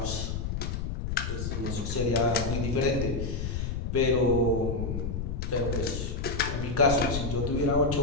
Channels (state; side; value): noise; left; rumble, 3 dB below the sound